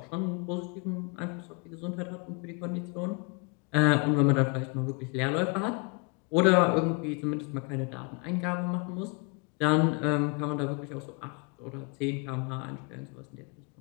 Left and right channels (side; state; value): right; quieter; 32.5 dB